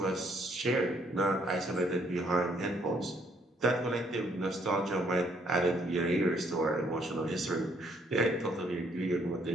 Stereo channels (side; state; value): both; normal; correlation 0.67